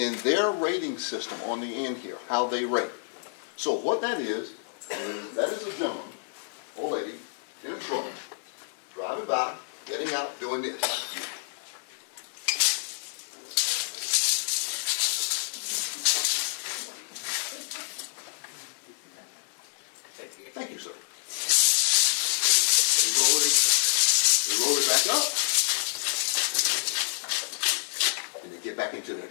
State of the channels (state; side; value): silent; right; digital silence